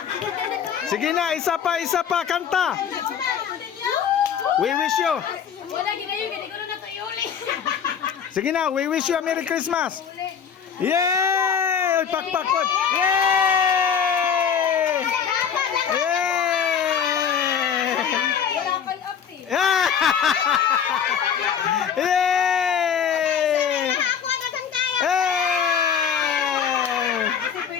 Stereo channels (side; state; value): right; quieter; 7.6 dB